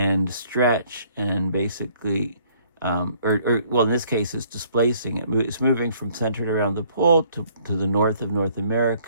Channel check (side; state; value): both; inverted; correlation -0.61